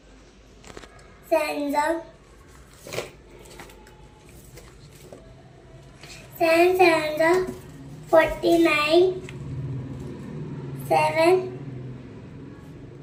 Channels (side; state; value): both; identical; correlation 1.00